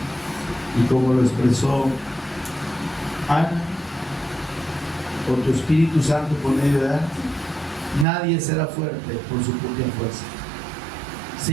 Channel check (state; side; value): drops out; left; at 8.1 s